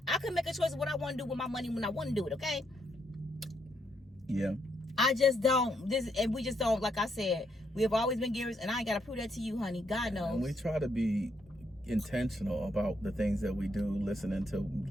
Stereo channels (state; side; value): normal; both; correlation 0.76